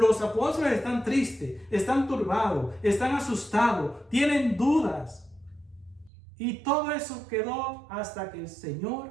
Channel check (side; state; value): left; drops out; at 6.1 s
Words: apóstoles están tristes, están turbados, están asustados, tienen dudas. Y todo eso quedó hasta que el